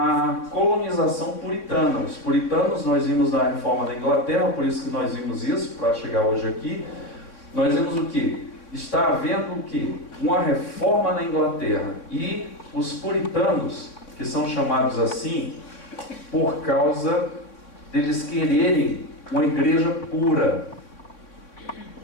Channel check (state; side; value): late; right; 3.6 ms